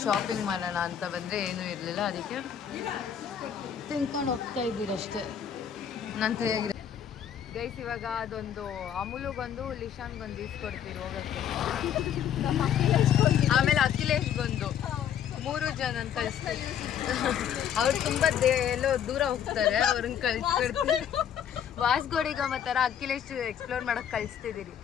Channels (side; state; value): right; quieter; 9.0 dB